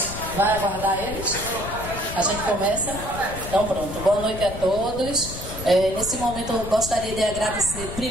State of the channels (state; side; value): noise; left; rumble, 9 dB below the sound